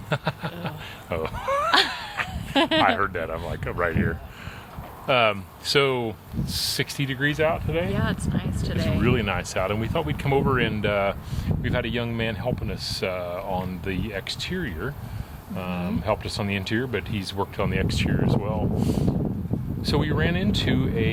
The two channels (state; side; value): identical; both; correlation 1.00